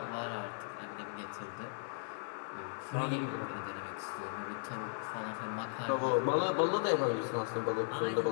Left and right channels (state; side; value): silent; right; 53 dB below the other